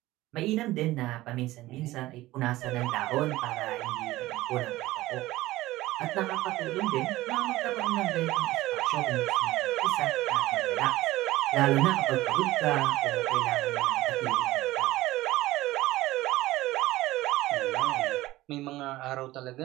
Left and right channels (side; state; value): left; quieter; 17.4 dB